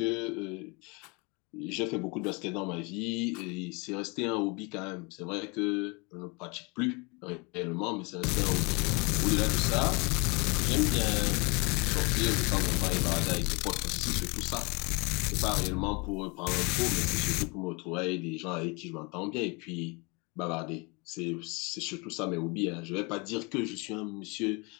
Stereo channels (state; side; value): quieter; right; 29.1 dB